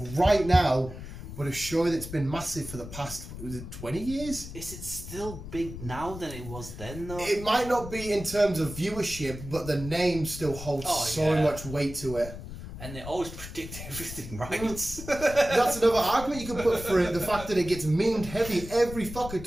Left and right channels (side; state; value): left; noise; rumble, 11 dB below the sound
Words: right now, but a show that's been massive for the past, was it 20 years? Is it still big now than it was then, though? It might not be in terms of viewership, but the name still holds so much weight to it. And they always predict everything, right? That's another argument you can put for it. The fact that it gets memed heavy. Every fucker